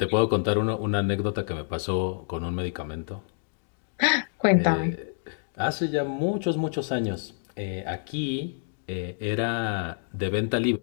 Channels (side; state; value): right; silent; digital silence